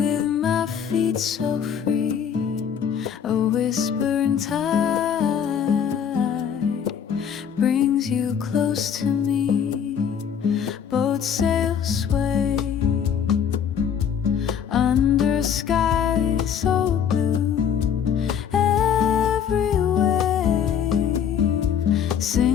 my feet so free, a whispering tide brings you close to me, boat sails sway under a sky so blue, every wave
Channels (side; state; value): right; quieter; 8.0 dB